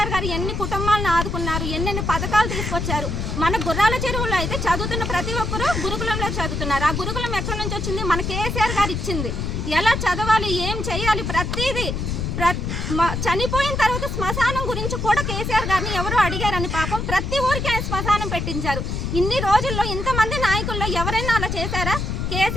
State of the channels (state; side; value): noise; left; rumble, 2 dB below the sound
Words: గారు ఎన్ని కుటుంబాలను ఆదుకున్నారు, ఎన్నెన్ని పథకాలు తీసుకొచ్చారు. మన గుర్రాల చెరువులో అయితే చదువుతున్న ప్రతి ఒక్కరూ గురుకులంలో చదువుతున్నారు. ఆ గురుకులం ఎక్కడి నుంచి వచ్చింది? మన కేసీఆర్ గారు ఇచ్చింది. ఎలా చదవాలి, ఏం చేయాలి, ప్రతిదీ. చనిపోయిన తర్వాత శ్మశానం గురించి కూడా కేసీఆర్ గారిని ఎవరో అడిగారని పాపం ప్రతి ఊరికి ఆయన శ్మశానం పెట్టించారు. ఇన్ని రోజుల్లో ఇంతమంది నాయకుల్లో ఎవరైనా అలా చేశారా?